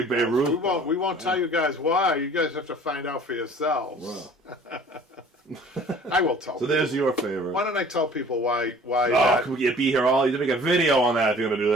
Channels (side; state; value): both; normal; correlation 0.49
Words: Babe Ruth. We won't tell you guys why. You guys have to find out for yourselves. Wow. I will tell. So there's your favorite. Why don't I tell people why? Oh, you'd be here all. You'd make a video on that if you're gonna do